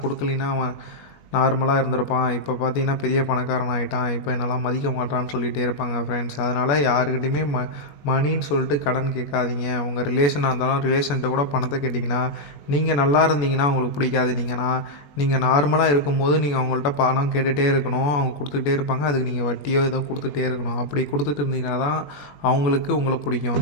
கொடுக்கலின்னா அவன் நார்மலாக இருந்திருப்பான், இப்போ பார்த்தீங்கன்னா பெரிய பணக்காரன் ஆகிட்டான், இப்போ என்னெல்லாம் மதிக்க மாட்டான்னு சொல்லிகிட்டே இருப்பாங்க ஃப்ரெண்ட்ஸ். அதனால் யாருக்கிட்டையுமே மணின்னு சொல்லிட்டு கடன் கேட்காதீங்க. உங்கள் ரிலேஷனாக இருந்தாலும் ரிலேஷன்கிட்ட கூட பணத்தை கேட்டிங்கன்னா, நீங்கள் நல்லா இருந்தீங்கன்னா அவங்களுக்கு பிடிக்காது. நீங்கள் நார்மலாக இருக்கும்போது நீங்கள் அவங்கள்ட்ட பணம் கேட்டுகிட்டே இருக்கணும், அவங்க கொடுத்துக்கிட்டே இருப்பாங்க. அதுக்கு நீங்கள் வட்டியோ ஏதோ கொடுத்துட்டே இருக்கணும். அப்படி கொடுத்துட்டு இருந்தீங்கன்னா தான் அவங்களுக்கு உங்களை பிடிக்கும்.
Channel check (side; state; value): right; late; 21 ms